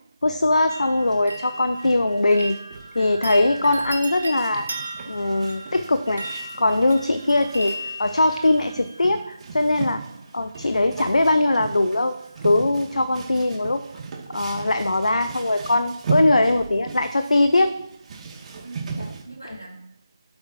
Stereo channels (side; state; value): both; inverted; correlation -0.90